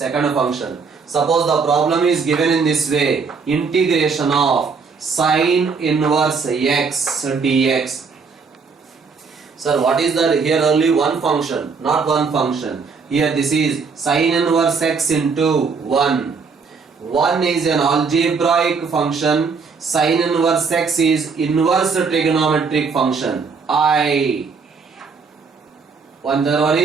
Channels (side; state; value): left; quieter; 5.1 dB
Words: function. Suppose the problem is given in this way, integration of sine inverse x dx. Sir, what is that? Here only one function, not one function. Here this is sine inverse x into 1. 1 is an algebraic function. Sine inverse x is inverse trigonometric function. The one